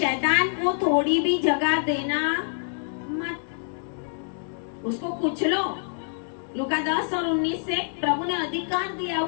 को थोड़ी भी जगह देना मत, उसको कुचलो। लूका 10 और 19 से प्रभु ने अधिकार दिया,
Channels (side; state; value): right; silent; digital silence